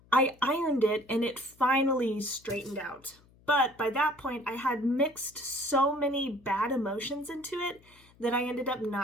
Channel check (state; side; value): noise; left; hum, 28 dB below the sound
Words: I ironed it, and it finally straightened out. But by that point, I had mixed so many bad emotions into it that I ended up